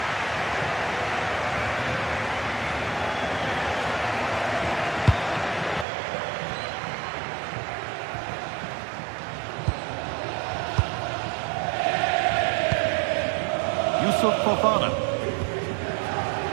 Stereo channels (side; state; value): left; drops out; at 5.9 s